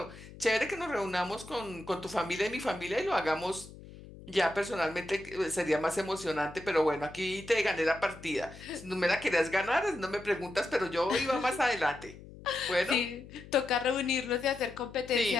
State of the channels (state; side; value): noise; left; hum, 17 dB below the sound